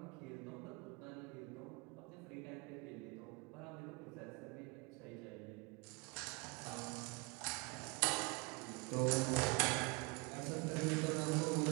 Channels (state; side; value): quieter; left; 28.4 dB